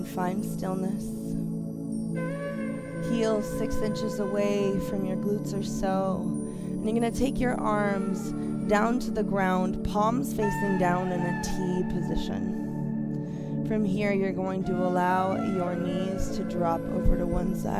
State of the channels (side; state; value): both; identical; correlation 1.00